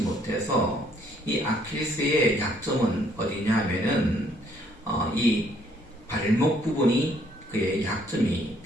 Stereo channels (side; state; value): both; normal; correlation 0.66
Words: 이 아킬레스의 약점은 어디냐 하면은 이 발목 부분이 그의 약점이